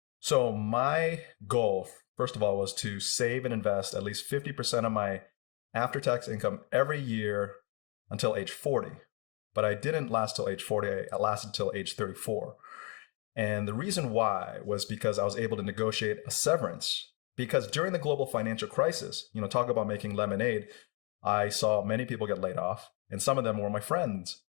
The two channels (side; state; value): right; quieter; 34.5 dB